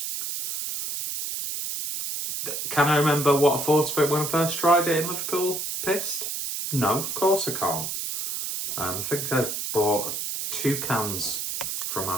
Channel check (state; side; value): noise; right; hiss, 4 dB below the sound